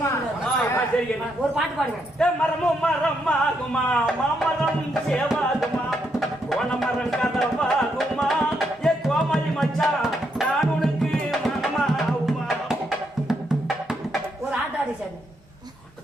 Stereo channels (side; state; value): both; normal; correlation 0.78